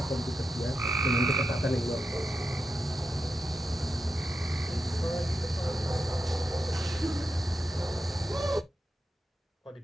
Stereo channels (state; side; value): normal; both; correlation 0.87